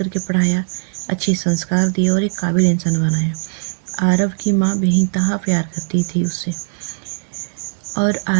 पढ़ाया, अच्छे संस्कार दिए और एक काबिल इंसान बनाया। आरव की माँ बेइंतहा प्यार करती थी उससे और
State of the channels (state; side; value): silent; left; digital silence